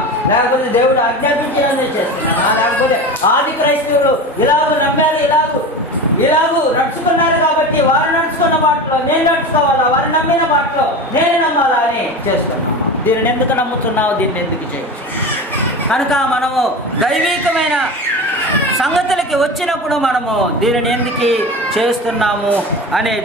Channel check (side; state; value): both; normal; correlation 0.28